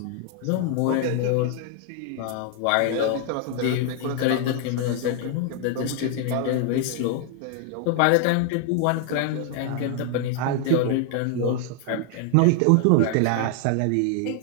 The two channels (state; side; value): different; both; correlation 0.00